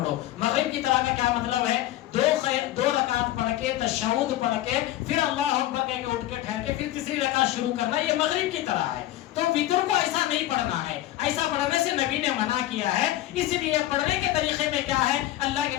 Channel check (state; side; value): quieter; right; 14.8 dB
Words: مغرب کی طرح کا کیا مطلب ہے؟ 2 رکعت پڑھ کے تشہد پڑھ کے پھر اللہ اکبر کہہ کے اٹھ کے ٹھہر کے پھر تیسری رکعت شروع کرنا, یہ مغرب کی طرح ہے. تو وتر کو ایسا نہیں پڑھنا ہے, ایسا پڑھنے سے نبی نے منع کیا ہے. اس لیے پڑھنے کے طریقے میں کیا ہے, اللہ